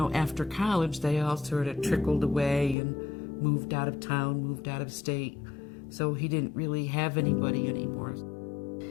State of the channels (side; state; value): right; drops out; at 2.8 s